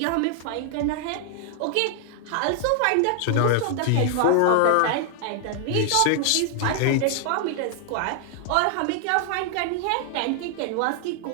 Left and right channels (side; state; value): both; different; correlation 0.00